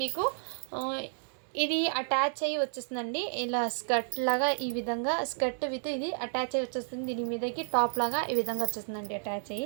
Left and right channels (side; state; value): left; silent; digital silence